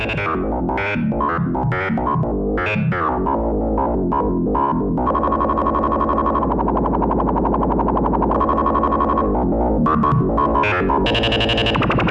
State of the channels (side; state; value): both; identical; correlation 1.00